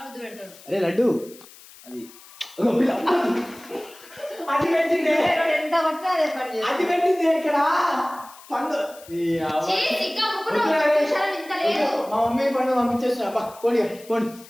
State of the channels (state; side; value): noise; left; hiss, 21 dB below the sound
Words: ముద్దు పెడతాడు. అరే లడ్డు అది ఎంత పట్టినా అదే పని చేస్తాడు. అది పెట్టింది ఇక్కడ పండు. మా మమ్మీ పండు పంపించేస్తున్నా. పోనీ